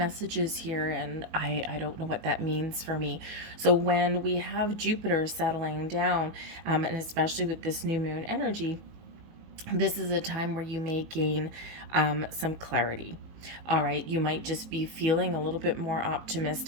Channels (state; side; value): late; left; 19 ms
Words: here, and I don't know what that means for me. So when we have Jupiter settling down, and especially with this new moon energy, this is a time where you may gain some clarity. All right, you might just be feeling a little bit more